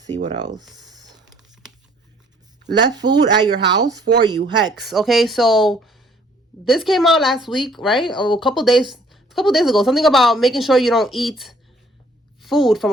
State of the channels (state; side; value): normal; both; correlation 0.60